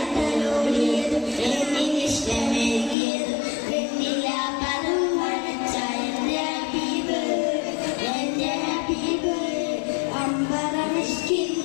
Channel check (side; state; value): right; drops out; at 3.0 s